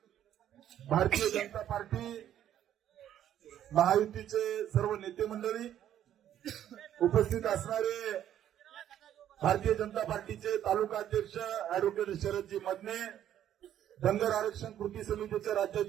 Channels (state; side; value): quieter; left; 10.9 dB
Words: भारतीय जनता पार्टी महायुतीचे सर्व नेते मंडळी, उपस्थित असणारे भारतीय जनता पार्टीचे तालुका अध्यक्ष अॅडव्होकेट शरदजी मदने, धनगर आरक्षण कृती समितीचे